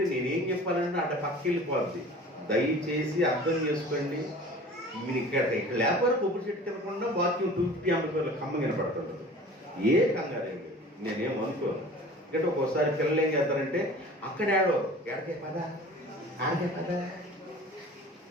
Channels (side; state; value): both; normal; correlation 0.43